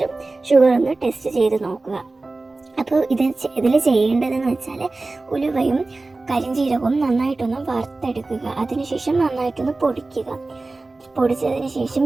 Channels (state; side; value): quieter; left; 3.3 dB